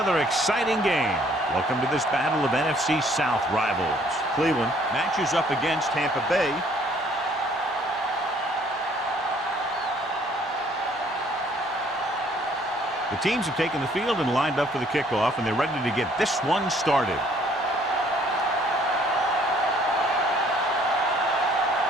exciting game. Welcome to this battle of NFC South rivals. Cleveland matches up against Tampa Bay. The teams have taken the field and lined up for the kickoff, and they're ready to get this one started.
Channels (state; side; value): normal; both; correlation 0.61